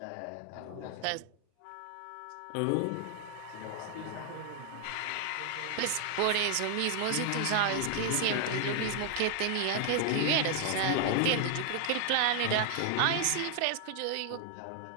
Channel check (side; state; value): both; different; correlation 0.00